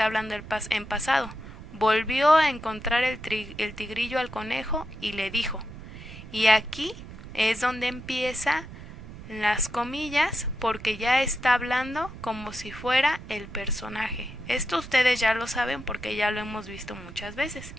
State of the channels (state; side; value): noise; right; rumble, 14 dB below the sound